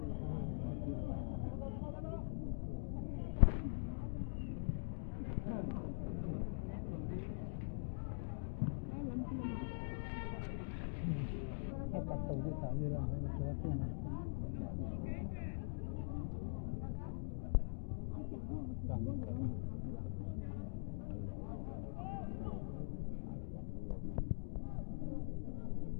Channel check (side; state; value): right; silent; digital silence